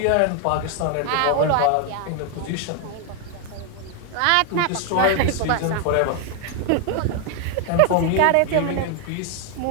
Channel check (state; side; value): different; both; correlation 0.01